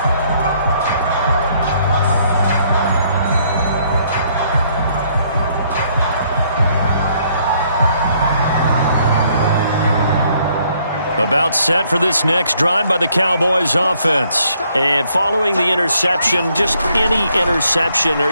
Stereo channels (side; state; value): both; inverted; correlation -0.68